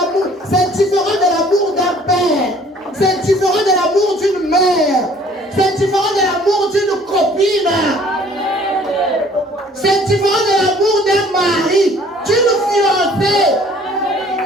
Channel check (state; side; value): normal; both; correlation 0.55